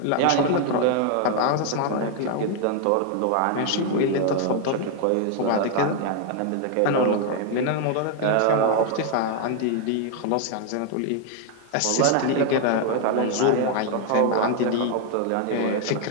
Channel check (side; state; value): both; different; correlation 0.00